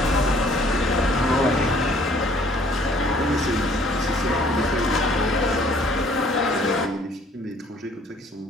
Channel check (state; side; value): normal; both; correlation 0.59